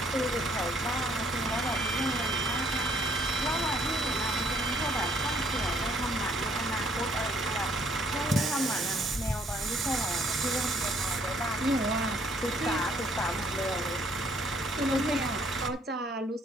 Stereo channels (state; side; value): normal; both; correlation 0.64